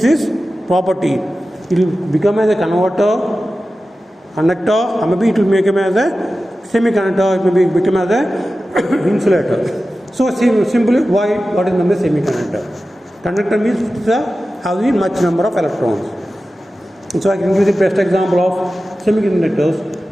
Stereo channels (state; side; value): normal; both; correlation 0.94